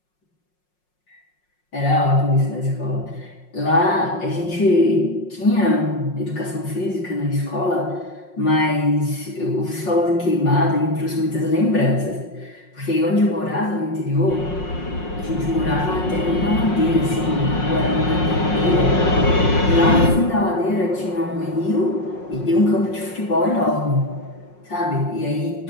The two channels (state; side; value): late; right; 5.5 ms